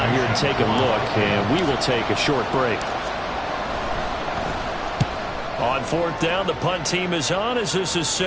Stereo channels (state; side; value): identical; both; correlation 1.00